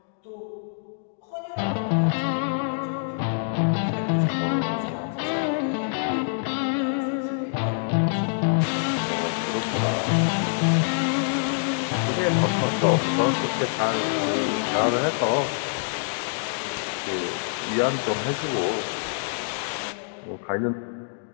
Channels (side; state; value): right; silent; digital silence